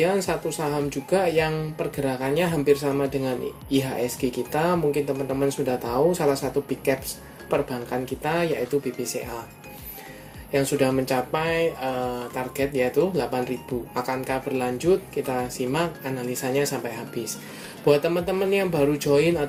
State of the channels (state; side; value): identical; both; correlation 1.00